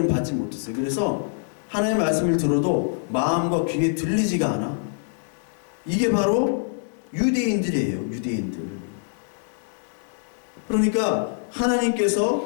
받지 못했어요. 그래서 하나님의 말씀을 들어도 마음과 귀에 들리지가 않아. 이게 바로 유대인들이에요. 유대인들. 그러니까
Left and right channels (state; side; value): silent; right; digital silence